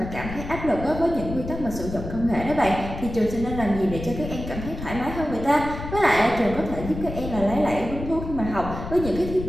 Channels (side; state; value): left; noise; rumble, 8 dB below the sound